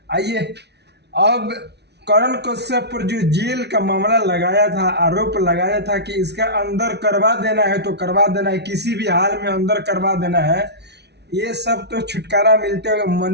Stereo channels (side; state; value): left; late; 0.49 ms